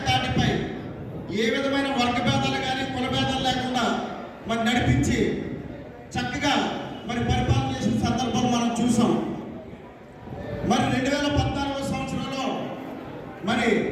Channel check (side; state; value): both; identical; correlation 1.00